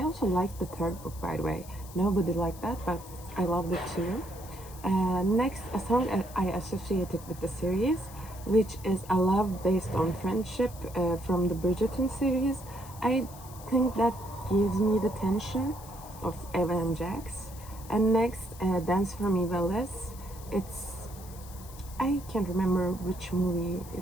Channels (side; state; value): left; noise; hiss, 18 dB below the sound